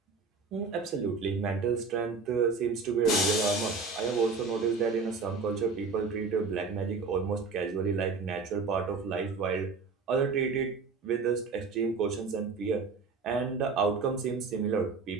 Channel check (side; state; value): left; quieter; 4.5 dB